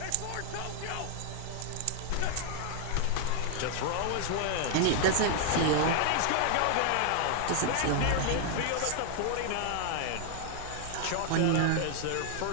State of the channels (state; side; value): different; both; correlation 0.00